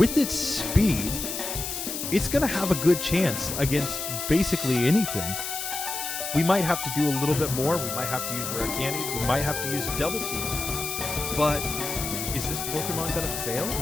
its speed, it's going to have a good chance against basically anything. We might have to do a little bit more. We might have to use rare candies. We might have to use double team. But is this Pokemon going to fail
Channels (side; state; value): left; noise; hiss, 5 dB below the sound